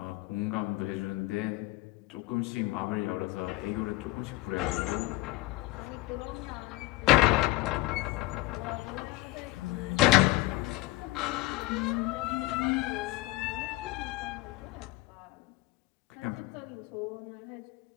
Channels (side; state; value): right; quieter; 19.5 dB